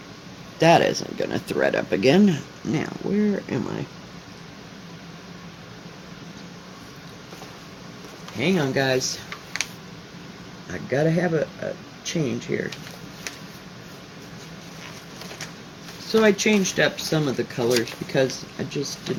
That isn't gonna thread up again. Now, where am I? Hang on, guys. I gotta have a change here. So I changed up some of the colors because I just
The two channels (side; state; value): both; identical; correlation 1.00